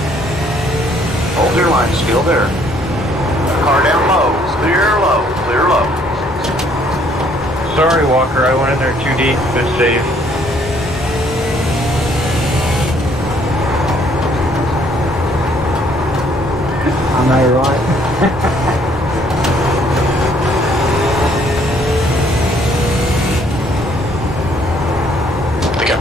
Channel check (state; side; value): normal; both; correlation 0.64